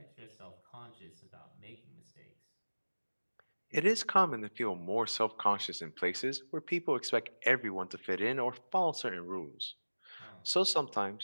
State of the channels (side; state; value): both; inverted; correlation -1.00